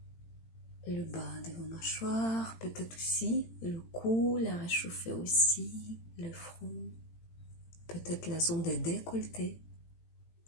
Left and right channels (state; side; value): late; right; 18 ms